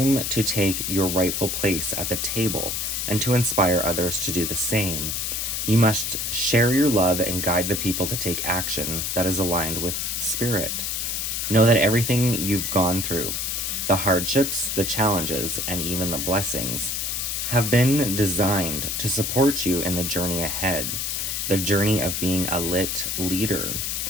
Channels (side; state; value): left; noise; hiss, 1 dB below the sound